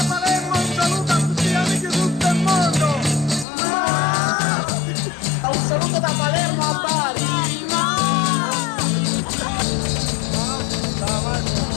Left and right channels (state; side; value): drops out; right; at 3.5 s